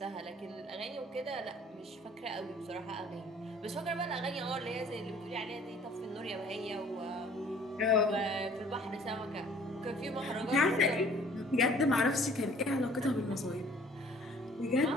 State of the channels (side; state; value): both; normal; correlation 0.54